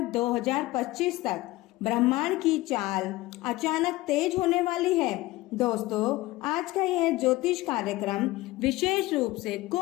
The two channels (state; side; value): quieter; right; 18.7 dB